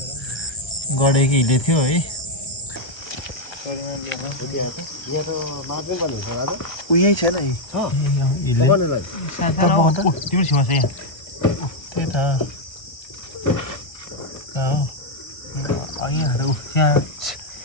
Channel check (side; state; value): right; late; 1.3 ms